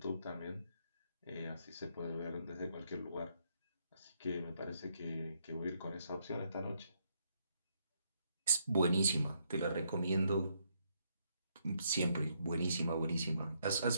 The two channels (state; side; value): inverted; both; correlation -0.75